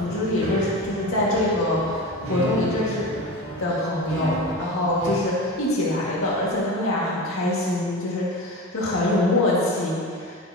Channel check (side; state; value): both; normal; correlation 0.28